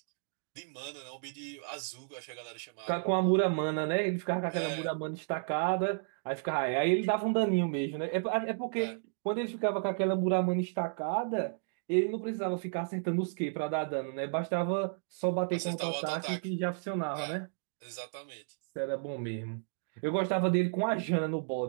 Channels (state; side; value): silent; left; digital silence